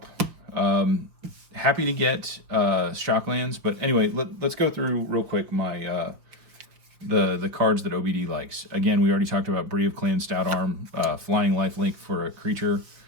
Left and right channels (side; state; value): left; late; 5.4 ms